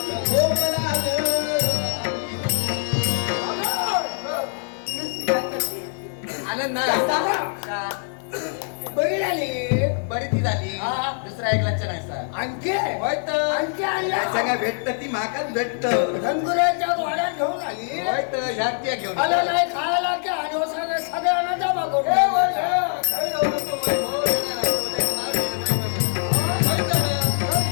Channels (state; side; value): silent; right; 61 dB below the other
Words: झोपला ग आनंद बघितली बरी ती झाली दुसरा एक लक्ष नाही सर आणखी होय तर आणखी आणल्या सगळ्या भेटत ती माकाच भेटत धनगुराच्या वाड्यात घेऊन आली होय तर ह्या त्या घेऊन आलं नाही खायला की आणि सगळ्यांना जमा करून